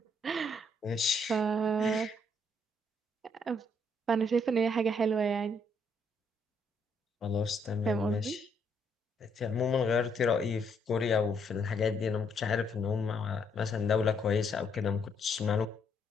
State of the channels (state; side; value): normal; both; correlation 0.72